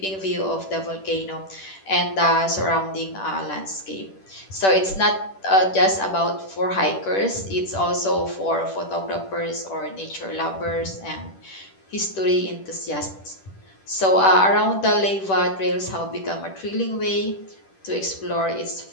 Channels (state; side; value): late; right; 10 ms